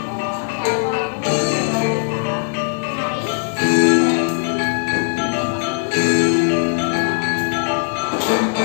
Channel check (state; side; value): silent; right; digital silence